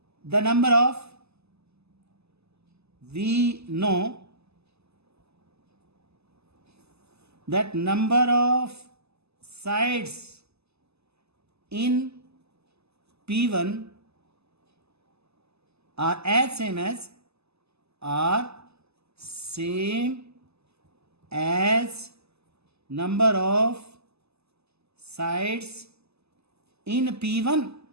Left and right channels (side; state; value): left; late; 0.79 ms